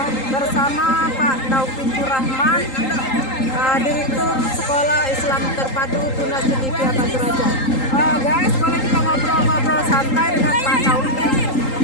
bersama Pak Taufikur Rahman, Direktur Sekolah Islam Terpadu Tunas Cendekia Batu Raja. Guys, boleh kita ngobrol-ngobrol santai dengan Pak Taufik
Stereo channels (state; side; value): late; right; 3.8 ms